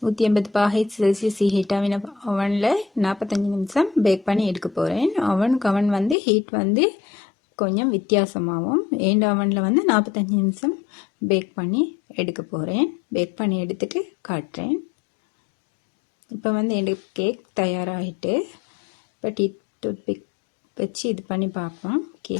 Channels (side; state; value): right; drops out; at 6.2 s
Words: 180 செல்சியஸ் ஹீட் ஆகின அவனில் 45 நிமிஷம் பேக் பண்ணி எடுக்க போகிறேன். அவன் ஹீட் கொஞ்சம் வித்தியாசமாகும். எந்த அவனில் 45 நிமிஷம் பேக் பண்ணி எடுக்க போகிறேன். பேக் பண்ணி எடுத்துட்டு காட்டுறேன். இப்போ எனக்கு கேக் தயாராகிட்டு இப்போ டூத்பிக் வச்சு இது பண்ணி பார்ப்போம்.